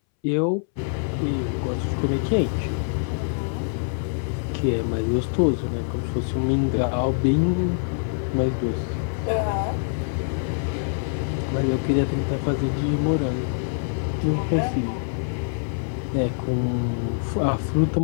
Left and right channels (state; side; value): silent; right; 62 dB below the other